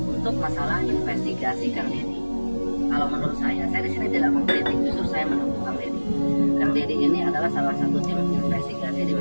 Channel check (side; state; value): both; inverted; correlation -1.00